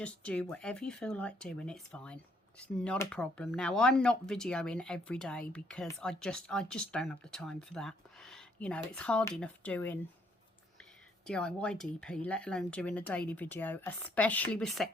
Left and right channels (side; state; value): both; normal; correlation 0.68